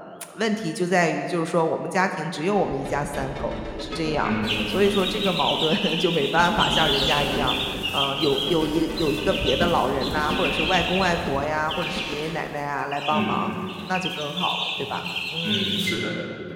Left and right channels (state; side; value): identical; both; correlation 1.00